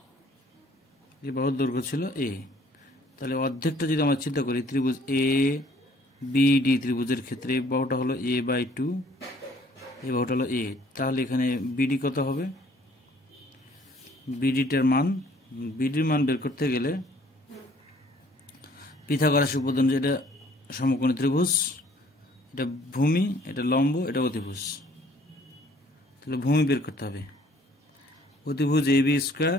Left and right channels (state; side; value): normal; both; correlation 0.58